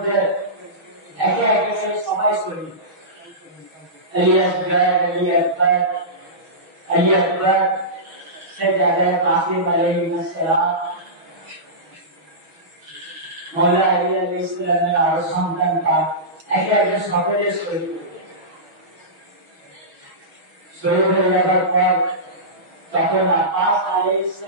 একে একে সবাই শহীদ। আলী আকবর, আলী আকবর, আলী আকবর সে জায়গায় কাসিম আলাইহিস সালাম, মওলা আলী আলাইহিস সালামের আরো সন্তান পাক একে একে সকলে শহীদ হয়ে যায়। শহীদ হয়ে যাবার পর তখন আব্বাস আলাইহিস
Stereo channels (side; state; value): left; late; 6.2 ms